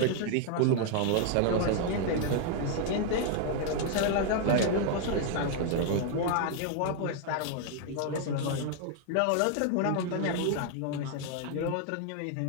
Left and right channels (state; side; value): different; both; correlation 0.00